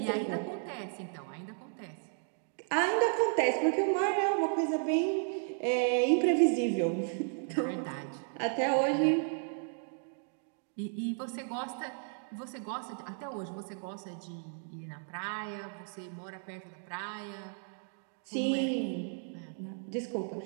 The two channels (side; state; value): left; silent; 55 dB below the other